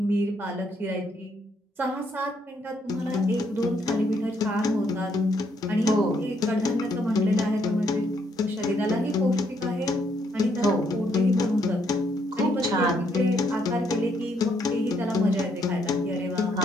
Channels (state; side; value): normal; both; correlation 0.72